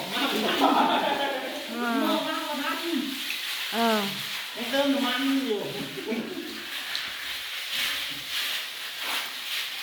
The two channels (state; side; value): identical; both; correlation 1.00